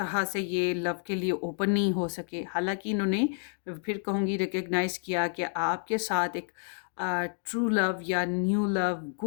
से ये लव के लिए ओपन नहीं हो सके। हालांकि इन्होंने, फिर कहूँगी, रिकग्नाइज़ किया कि आपके साथ एक ट्रू लव या न्यू लव,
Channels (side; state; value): right; silent; digital silence